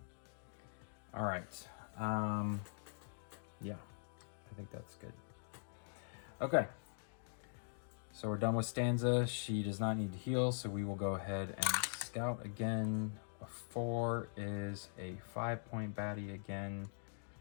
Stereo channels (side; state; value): right; silent; digital silence